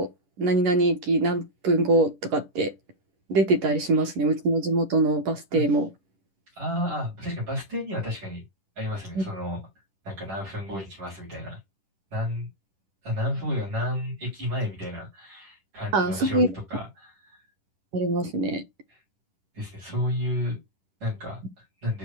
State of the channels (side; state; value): left; late; 10 ms